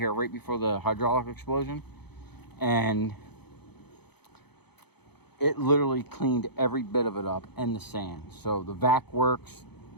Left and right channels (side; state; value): right; late; 0.98 ms